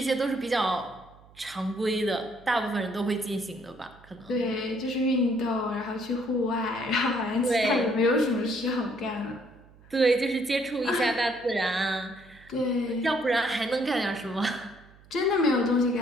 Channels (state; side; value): noise; right; hum, 25 dB below the sound